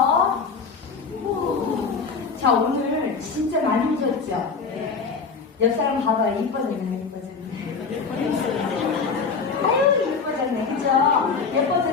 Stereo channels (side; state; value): right; quieter; 5.1 dB